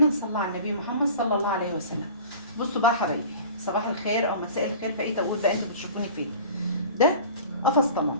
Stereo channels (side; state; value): both; inverted; correlation -0.41